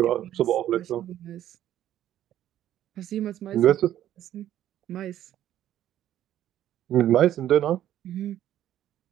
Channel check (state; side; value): quieter; left; 12.0 dB